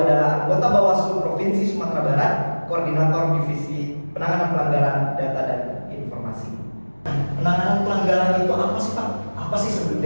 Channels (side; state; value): both; inverted; correlation -1.00